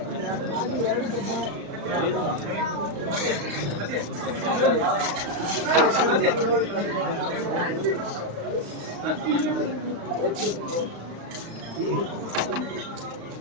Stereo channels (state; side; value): late; left; 35 ms